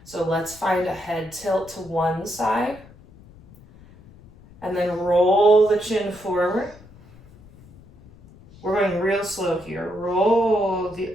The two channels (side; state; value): left; noise; rumble, 23 dB below the sound